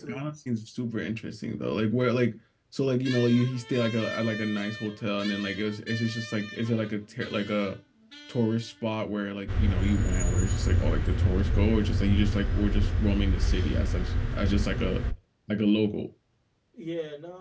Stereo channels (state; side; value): identical; both; correlation 1.00